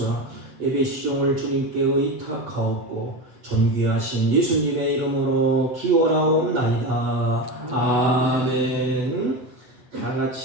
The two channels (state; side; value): late; left; 7.6 ms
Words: 예배 시종을 주님께 의탁하옵고 존귀하신 예수님의 이름으로 기원하옵나이다. 아멘. 다